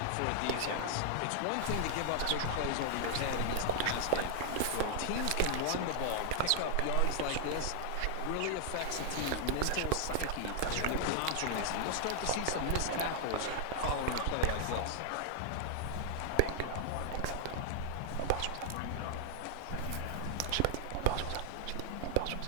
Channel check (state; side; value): different; both; correlation -0.01